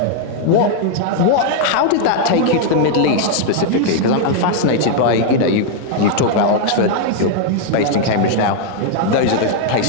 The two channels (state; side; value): different; both; correlation 0.00